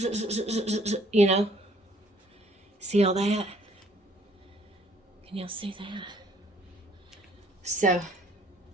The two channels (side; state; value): both; normal; correlation 0.61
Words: you know. See all that? Can y'all see that? So,